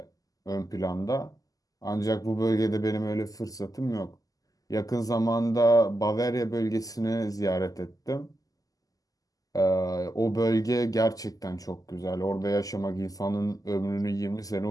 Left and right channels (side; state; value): right; late; 0.17 ms